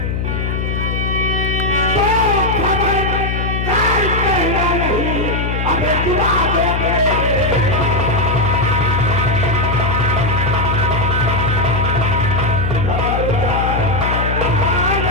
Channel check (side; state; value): left; noise; hum, 1 dB below the sound